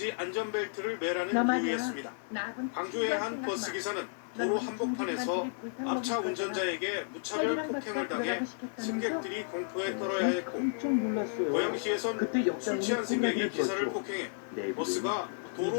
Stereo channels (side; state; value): right; silent; 56 dB below the other